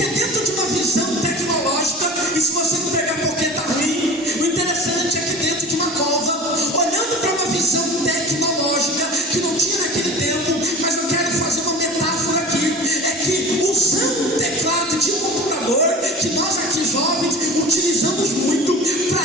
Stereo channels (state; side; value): normal; both; correlation 0.37